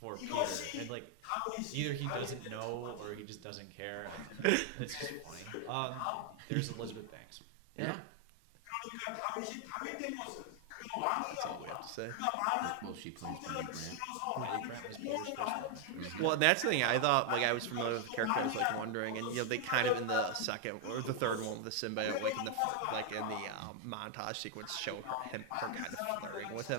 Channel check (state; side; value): different; both; correlation 0.00